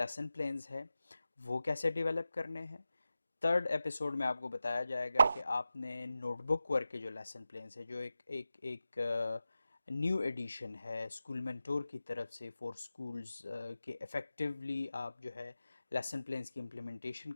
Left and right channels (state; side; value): inverted; both; correlation -0.93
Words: प्लान्स है वो कैसे डेवलप करने हैं। थर्ड एपिसोड में आपको बताया जाएगा कि आपने नोटबुक वर्क के जो लेसन प्लान्स है, जो एक एक एक न्यू एडिशन है स्कूल मेंटोर की तरफ से फॉर स्कूल्स, के इफ़ेक्टिवली आप जो है लेसन प्लान्स की इम्प्लीमेंटेशन